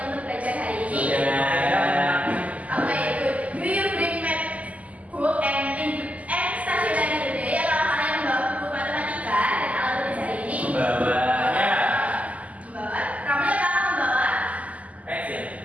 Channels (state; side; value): late; left; 0.072 ms